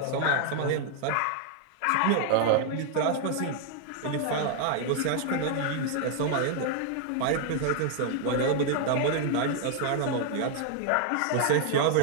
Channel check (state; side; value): different; both; correlation 0.00